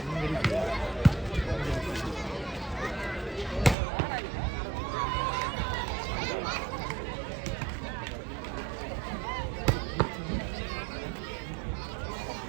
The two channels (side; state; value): left; drops out; at 3.8 s